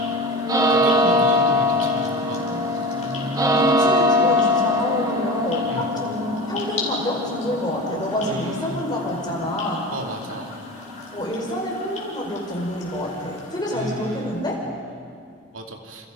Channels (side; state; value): both; normal; correlation 0.31